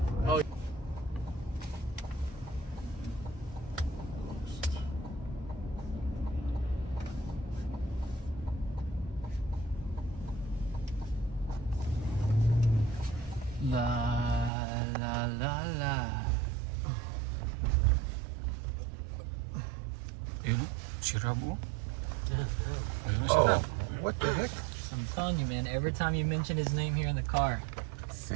Oh. La. Ayun, si Rabo. Ayun, si Rabo. What the heck? I'm telling you, man. Every time you mention his name here in the car,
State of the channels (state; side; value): drops out; left; at 14.5 s